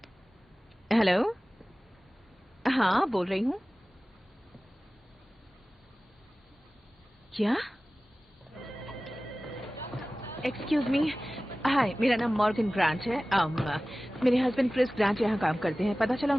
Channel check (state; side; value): normal; both; correlation 0.97